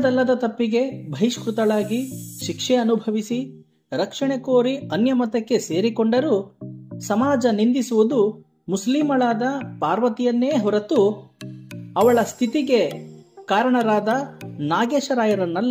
ತಪ್ಪಿಗೆ ಬಹಿಷ್ಕೃತಳಾಗಿ ಶಿಕ್ಷೆ ಅನುಭವಿಸಿ ರಕ್ಷಣೆ ಕೋರಿ ಅನ್ಯಮತಕ್ಕೆ ಸೇರಿಕೊಂಡರೂ ಸಮಾಜ ನಿಂದಿಸುವುದು ಮುಸ್ಲಿಮಳಾದ ಪಾರ್ವತಿಯನ್ನೇ ಹೊರತು ಅವಳ ಸ್ಥಿತಿಗೆ ಕಾರಣರಾದ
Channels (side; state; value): both; identical; correlation 1.00